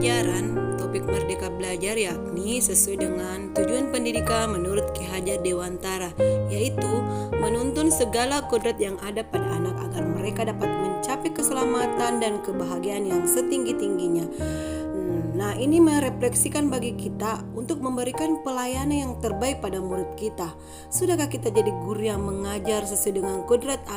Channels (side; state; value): both; identical; correlation 1.00